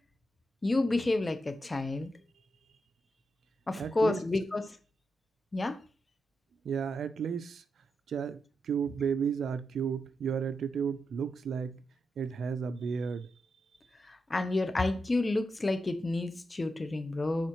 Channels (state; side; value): normal; both; correlation 0.86